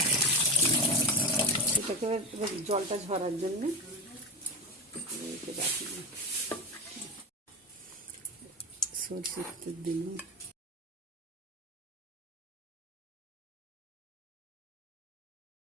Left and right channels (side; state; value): both; normal; correlation 0.21